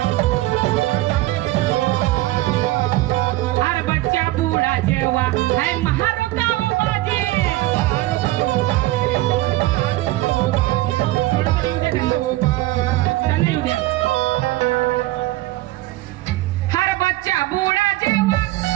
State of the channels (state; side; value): quieter; left; 17.8 dB